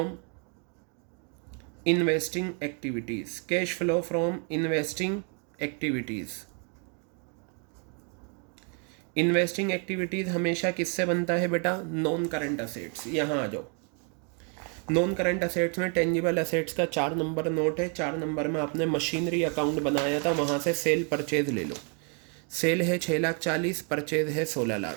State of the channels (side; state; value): left; quieter; 39.5 dB